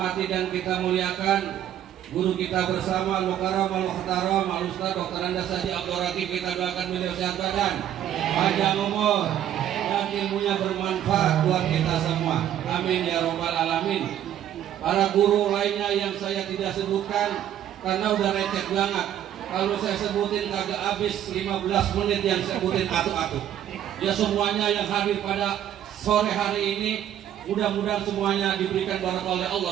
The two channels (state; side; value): quieter; left; 11.0 dB